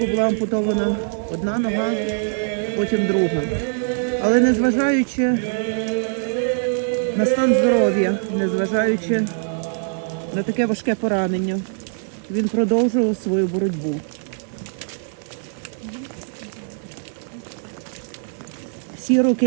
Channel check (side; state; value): left; silent; digital silence